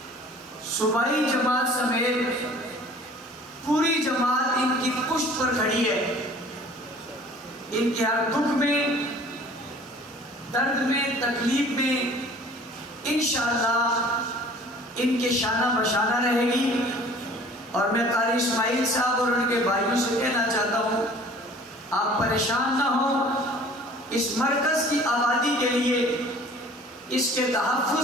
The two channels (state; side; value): normal; both; correlation 0.49